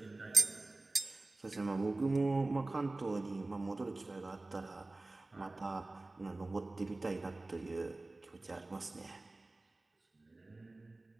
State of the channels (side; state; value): left; quieter; 3.0 dB